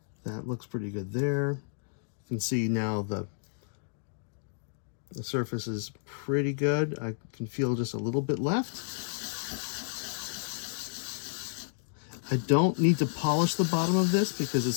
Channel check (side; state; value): right; silent; digital silence